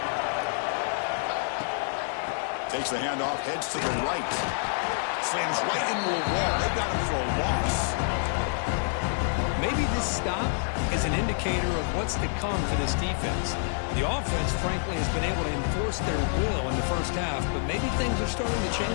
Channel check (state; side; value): silent; right; digital silence